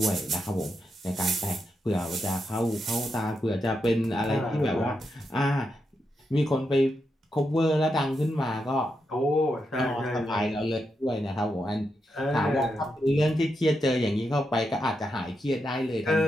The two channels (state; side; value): normal; both; correlation 0.84